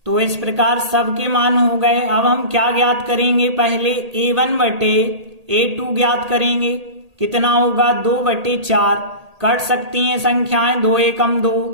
तो इस प्रकार सबके मान हो गए। अब हम क्या ज्ञात करेंगे, पहले a1 बटे a2 ज्ञात करेंगे। कितना होगा 2 बटे 4, कट सकती हैं संख्याएं, 2 एकम 2,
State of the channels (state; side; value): late; left; 1.8 ms